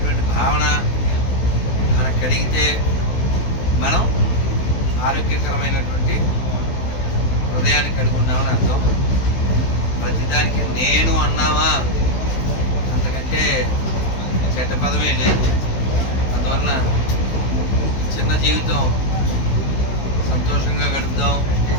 భావన మనకు కలిగితే మనం ఆరోగ్యకరమైనటువంటి హృదయాన్ని కలిగి ఉన్నామని అర్థం. ప్రతిదానికి నేను అన్నావా, అంతకంటే చెడ్డ పదమే లేదు. అందువలన చిన్న జీవితం సంతోషంగా గడుపుదాం,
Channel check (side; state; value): right; late; 16 ms